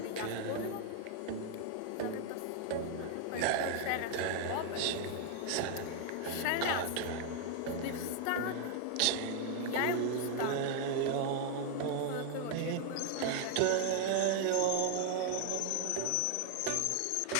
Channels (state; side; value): different; both; correlation 0.00